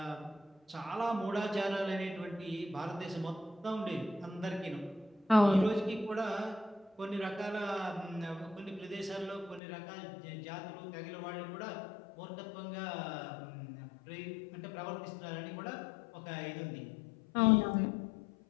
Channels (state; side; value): drops out; right; at 9.6 s